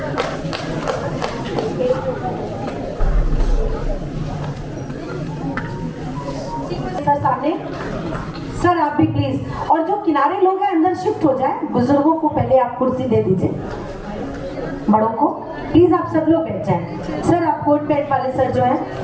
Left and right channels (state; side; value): identical; both; correlation 1.00